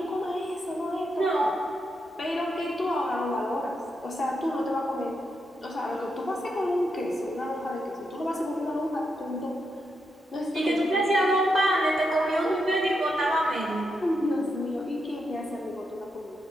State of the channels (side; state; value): both; normal; correlation 0.83